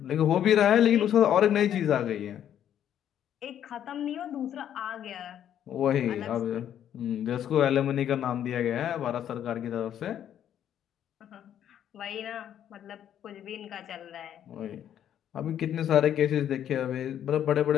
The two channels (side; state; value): right; quieter; 10.2 dB